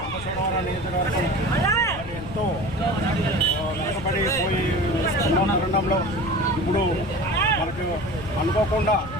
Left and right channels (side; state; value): left; noise; rumble, 13 dB below the sound